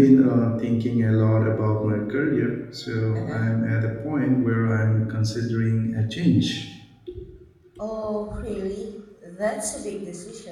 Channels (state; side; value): identical; both; correlation 1.00